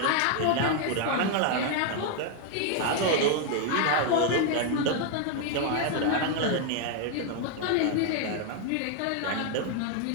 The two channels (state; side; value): different; both; correlation 0.00